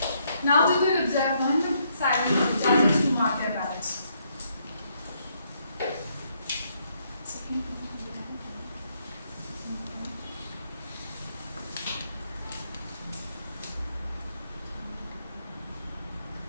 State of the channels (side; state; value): both; inverted; correlation -0.73